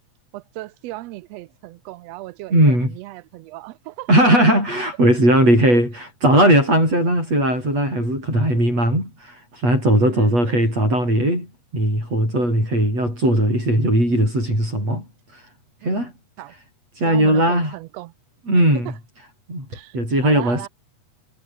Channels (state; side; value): late; left; 8.3 ms